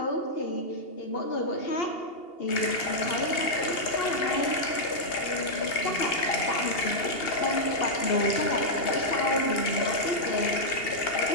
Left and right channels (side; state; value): right; late; 2.8 ms